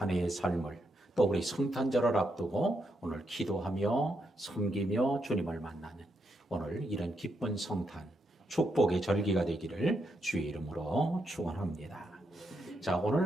해의 삶을 또 우리 성탄절을 앞두고 오늘 기도하며 섬기며 주님을 만나는 오늘 이런 기쁜 성탄 축복의 절기가 되기를 주의 이름으로 축원합니다. 자,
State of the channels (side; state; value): both; normal; correlation 0.81